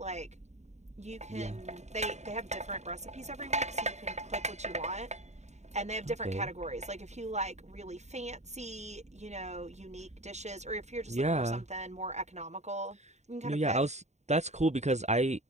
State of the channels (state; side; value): late; left; 0.33 ms